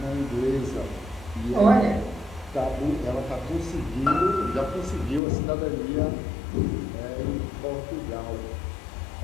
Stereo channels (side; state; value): right; drops out; at 5.2 s